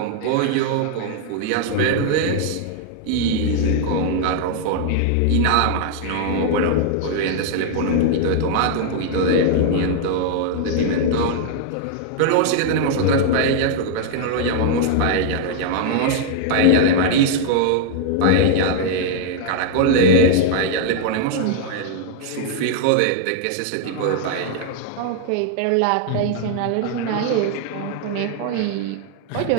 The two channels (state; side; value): different; both; correlation 0.00